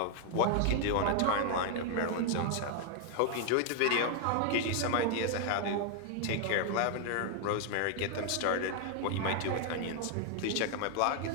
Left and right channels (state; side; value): different; both; correlation 0.00